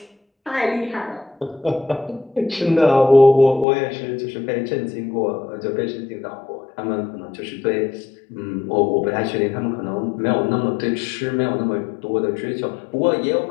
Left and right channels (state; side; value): drops out; right; at 3.7 s